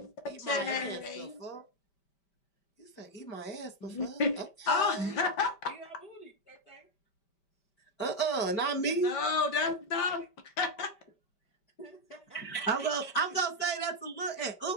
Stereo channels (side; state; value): right; late; 5.1 ms